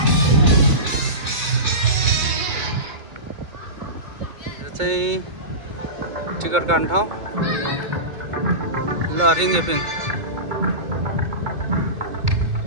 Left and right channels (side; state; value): left; late; 2.0 ms